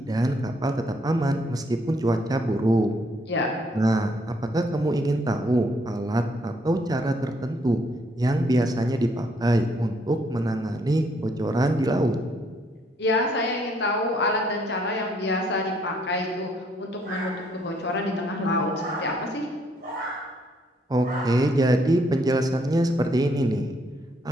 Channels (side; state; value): both; normal; correlation 0.70